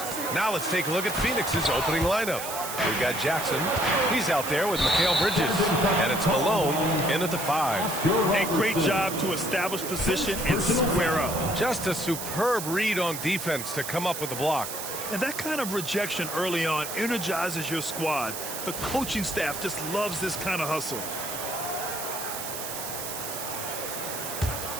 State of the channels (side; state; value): right; noise; hiss, 6 dB below the sound